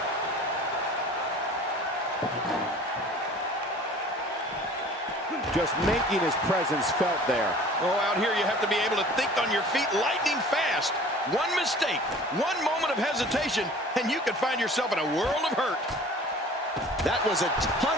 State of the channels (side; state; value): both; normal; correlation 0.46